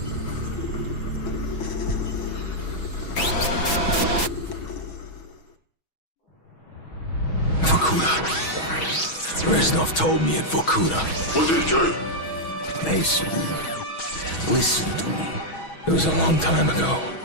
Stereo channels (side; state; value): right; late; 6.2 ms